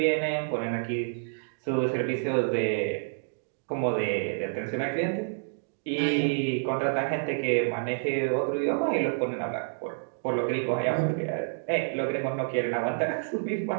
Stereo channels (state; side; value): silent; left; digital silence